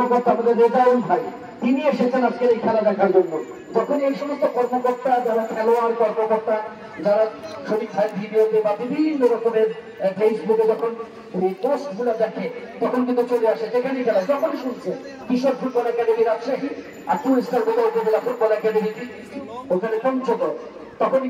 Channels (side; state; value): both; identical; correlation 1.00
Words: আমাদের রেজাউল ভাই, তিনি এসেছেন আজকের এই খেলা দেখার জন্য। যখন এই সমস্ত কর্মকর্তা, যারা খেলোয়াড় কর্মকর্তা, যারা শরীর ভাই ভিডিওতে বা বিভিন্ন রকমের ফেসবুকে যখন পোস্ট গুলো দেখে, তখন কিন্তু চলে আসে যেখানে খেলা। যখন শুনছে কিশোর ফুটবল একাডেমি রাজশাহী আর 2 স্টার উপজেলা ফুটবল একাডেমি ওখানে পঞ্চগড়, তখনই